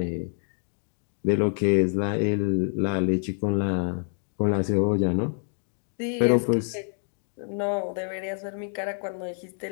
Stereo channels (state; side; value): silent; right; 55 dB below the other